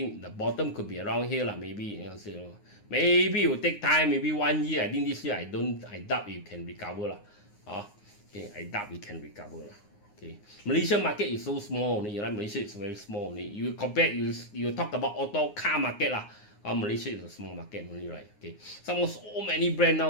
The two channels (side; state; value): right; late; 9.8 ms